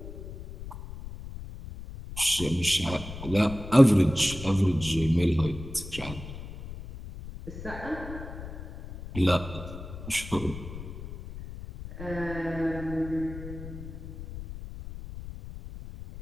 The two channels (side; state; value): left; noise; rumble, 11 dB below the sound